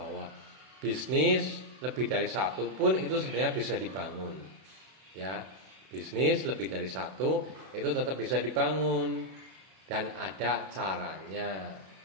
bisnis lebih dari satu pun itu sebenarnya bisa dibangun. Ya, bisnis lebih dari satu itu tetap bisa dibangun dan ada caranya.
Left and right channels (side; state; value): left; late; 32 ms